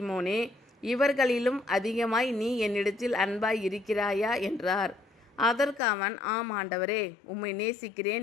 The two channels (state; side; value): drops out; right; at 5.8 s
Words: இவர்களிலும் அதிகமாய் நீ என்னிடத்தில் அன்பாய் இருக்கிறாயா என்றார். அதற்கு அவன், ஆம் ஆண்டவரே, உம்மை